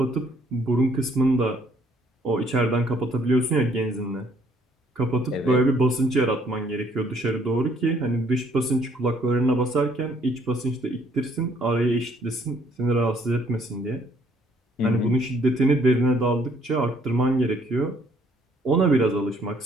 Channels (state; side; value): normal; both; correlation 0.64